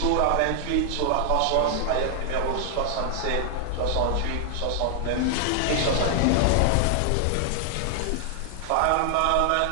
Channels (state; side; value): different; both; correlation 0.00